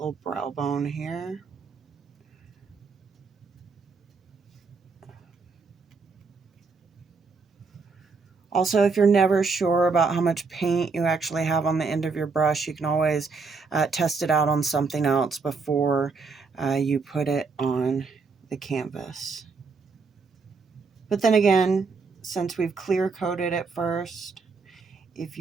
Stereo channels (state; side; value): quieter; left; 4.6 dB